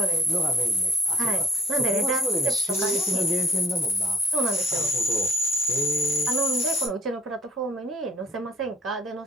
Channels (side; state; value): both; normal; correlation 0.62